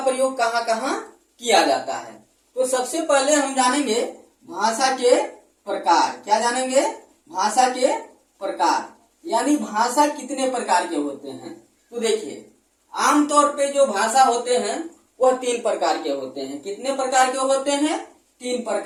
प्रयोग कहाँ कहाँ किया जाता है। तो सबसे पहले हम जानेंगे भाषा के प्रकार। क्या जानेंगे? भाषा के प्रकार, यानी भाषा कितने प्रकार के होते हैं। तो देखिए, आमतौर पे जो भाषा होते हैं वह 3 प्रकार के होते हैं। कितने प्रकार के होते हैं? 3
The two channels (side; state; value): both; identical; correlation 1.00